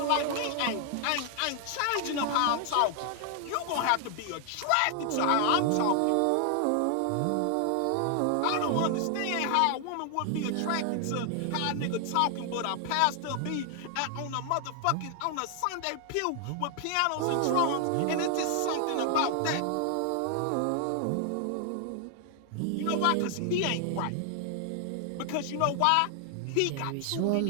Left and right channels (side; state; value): both; different; correlation 0.00